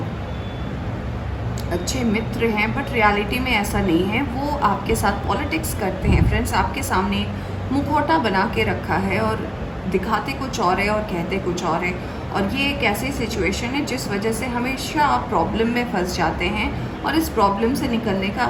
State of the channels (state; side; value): identical; both; correlation 1.00